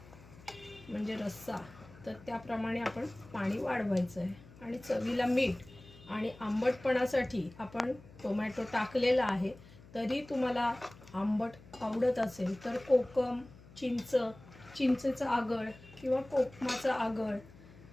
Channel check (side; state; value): left; noise; hum, 21 dB below the sound